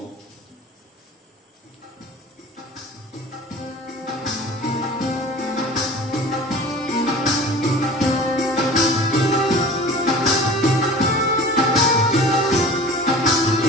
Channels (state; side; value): normal; both; correlation 0.40